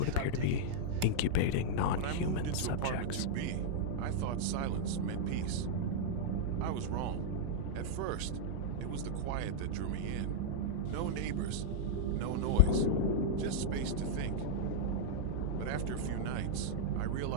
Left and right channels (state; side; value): different; both; correlation -0.03